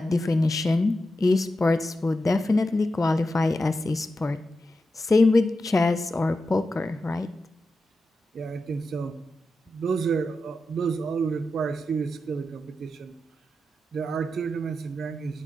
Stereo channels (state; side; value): normal; both; correlation 0.90